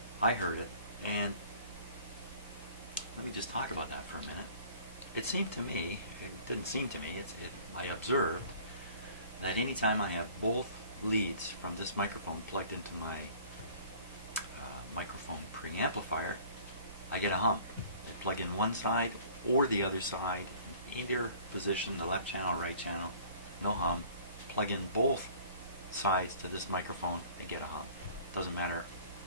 I heard it, and let me just talk about that for a minute. It seemed to me, it didn't seem to me, I observed that anytime I have both leads from this microphone plugged into my microphone preamplifier, I get a hum. I plug in one side or the other side, in either position, the left channel, right channel, no hum. Plug in both sides to this microphone, I get a hum. Doesn't matter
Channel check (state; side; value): inverted; both; correlation -0.50